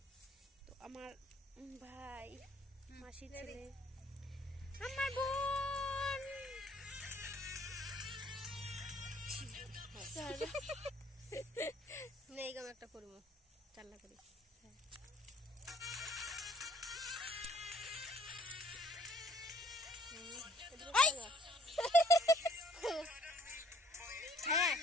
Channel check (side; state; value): both; normal; correlation 0.59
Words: তো আমার ভাই মাসির ছেলে, আমার বোন। নেই গাম একটা করব চাল্লা করি। হ্যাঁ